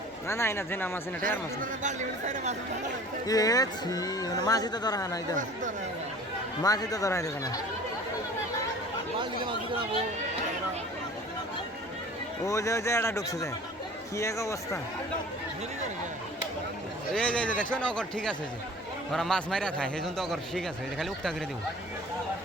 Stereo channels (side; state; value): both; normal; correlation 0.45